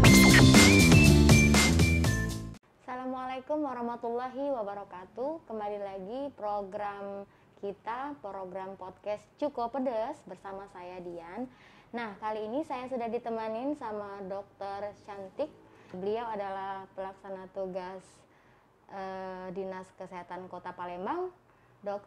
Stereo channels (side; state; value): both; identical; correlation 1.00